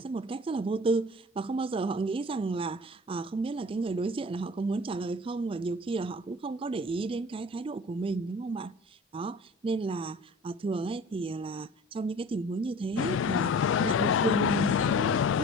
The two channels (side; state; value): both; normal; correlation 0.43